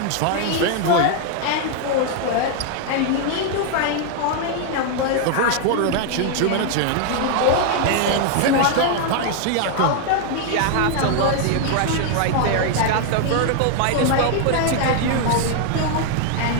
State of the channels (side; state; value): both; different; correlation 0.00